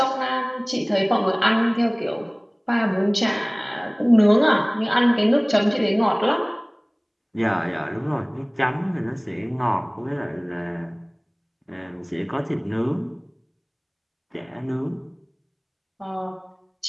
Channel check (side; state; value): both; identical; correlation 1.00